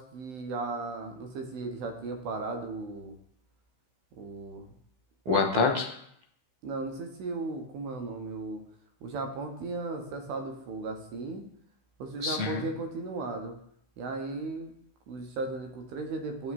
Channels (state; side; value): late; left; 16 ms